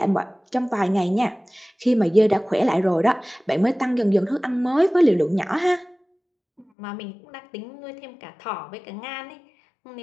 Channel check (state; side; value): drops out; right; at 6.7 s